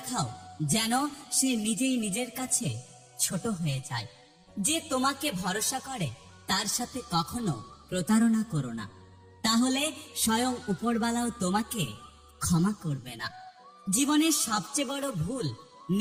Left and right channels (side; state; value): both; identical; correlation 1.00